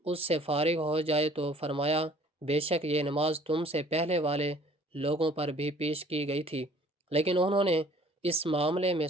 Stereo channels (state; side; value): normal; both; correlation 0.54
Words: اس سے فارغ ہو جائے تو فرمایا، بے شک یہ نماز تم سے پہلے والے لوگوں پر بھی پیش کی گئی تھی، لیکن انہوں نے اس معاملے میں